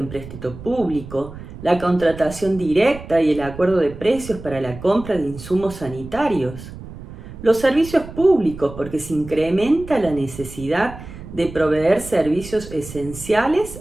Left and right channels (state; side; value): noise; right; rumble, 14 dB below the sound